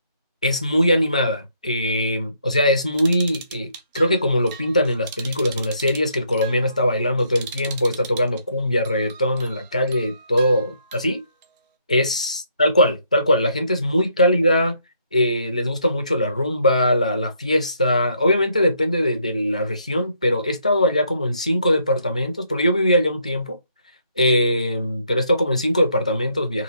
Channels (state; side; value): inverted; both; correlation -0.71